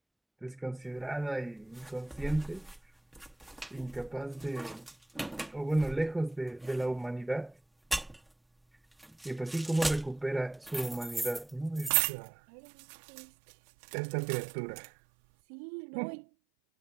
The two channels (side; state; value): left; drops out; at 11.9 s